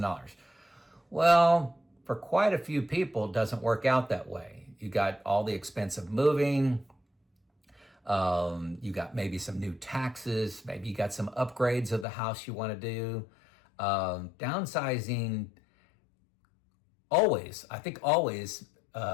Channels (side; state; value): right; drops out; at 12.1 s